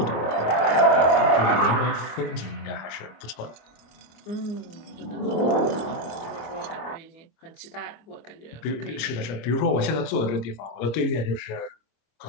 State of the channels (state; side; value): late; right; 26 ms